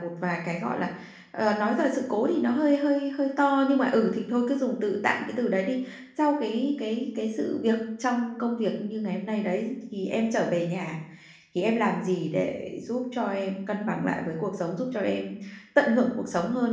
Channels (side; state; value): both; identical; correlation 1.00